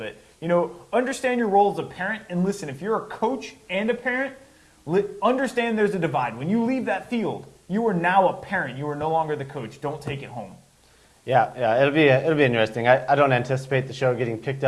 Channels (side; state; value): both; identical; correlation 1.00